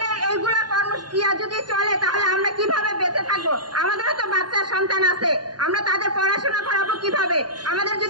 এইগুলা কর্মসূচিয়া যদি চলে তাহলে আমরা কিভাবে বেঁচে থাকবো? আমাদেরও তো বাচ্চা সন্তান আছে, আমরা তাদের পড়াশোনা করাবো কিভাবে? আমাদের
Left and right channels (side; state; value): left; late; 0.70 ms